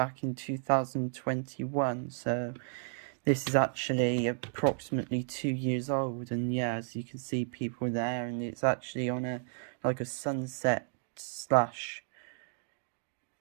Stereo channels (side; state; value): left; silent; digital silence